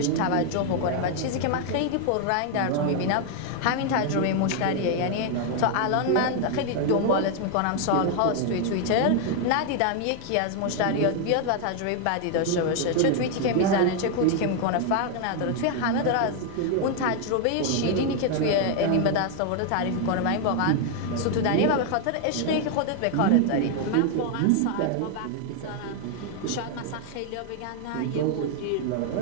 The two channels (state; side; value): different; both; correlation 0.00